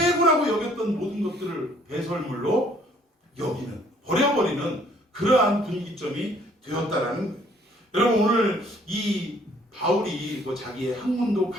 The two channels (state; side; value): normal; both; correlation 0.61